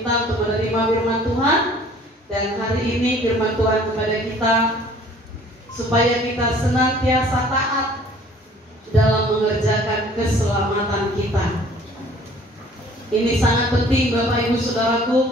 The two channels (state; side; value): normal; both; correlation 0.53